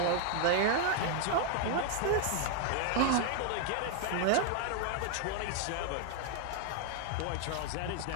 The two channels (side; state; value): both; different; correlation 0.00